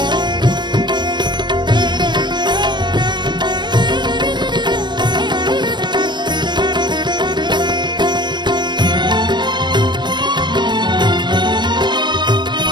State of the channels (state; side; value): late; left; 0.22 ms